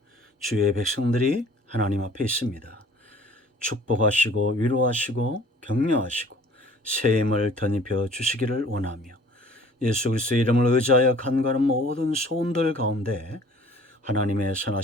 주의 백성들이 하나님 앞에 있습니다. 축복하시고 위로하시고 격려하시고 새 힘을 덧입혀 주시기를 원하며 예수 그리스도의 이름을 의지하여 간과하는 모든 소원들 가운데 하나님의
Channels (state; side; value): normal; both; correlation 0.51